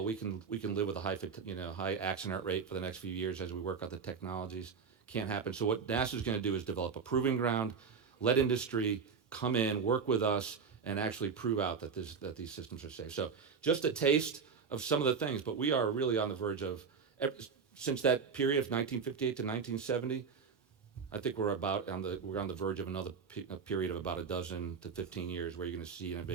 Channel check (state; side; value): quieter; left; 5.8 dB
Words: we can live with a high accident rate for the next few years as we work out the technologies. Can't happen. So what NASA's going to do is develop a proving ground, let industry come in, work with us, and actually prove out that these systems are safe. So just a taste of some of the things, but we are really on the verge of, since that period of 1958 to 1970, I think we're on the verge of another period of about 12 to 15 years where you're going to see